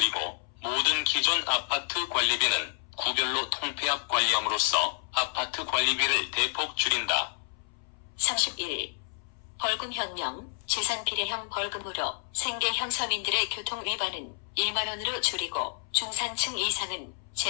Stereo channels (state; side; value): silent; right; 58 dB below the other